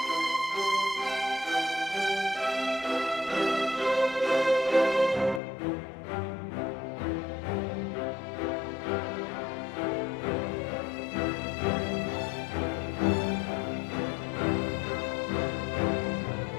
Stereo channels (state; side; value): drops out; right; at 5.4 s